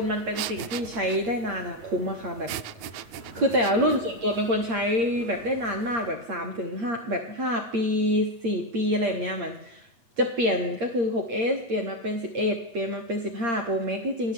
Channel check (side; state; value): left; late; 8.6 ms